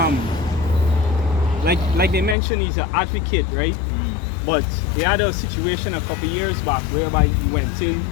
like they mentioned, he's an advocate, right? But they had a situation a couple years back whereby he went in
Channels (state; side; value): drops out; right; at 2.4 s